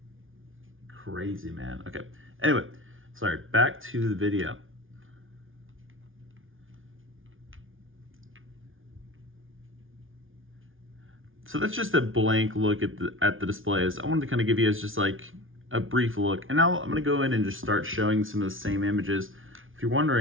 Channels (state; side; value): late; left; 0.58 ms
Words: crazy, man. Okay, anyway, sorry, back to the video. So that's just a blank look at the displays. I wanted to kind of give you guys just like a brief look. And now I'm gonna go in and just start showing some of the same images. If you're